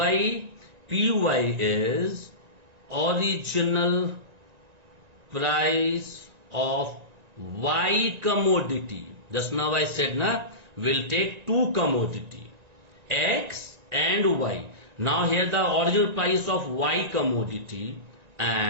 PY is original price of Y commodity. Just now I said we'll take two commodity, X and Y. Now here the original price of Y commodity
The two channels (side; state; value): left; late; 1.9 ms